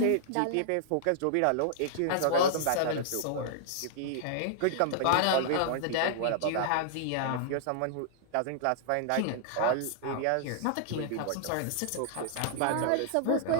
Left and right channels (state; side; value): different; both; correlation -0.01